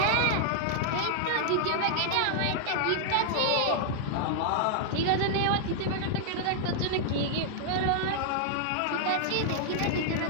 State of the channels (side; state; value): both; different; correlation -0.01